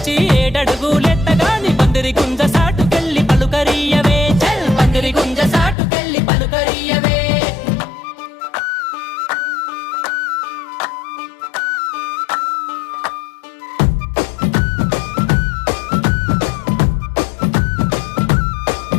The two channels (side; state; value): right; drops out; at 5.8 s